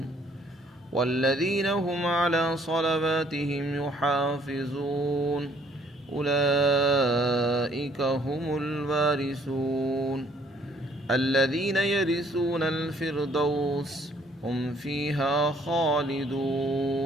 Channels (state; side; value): normal; both; correlation 0.62